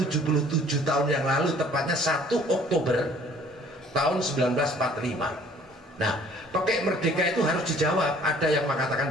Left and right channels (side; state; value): both; normal; correlation 0.55